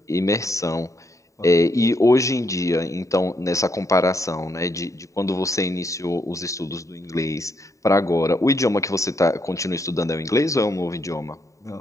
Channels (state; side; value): late; right; 0.16 ms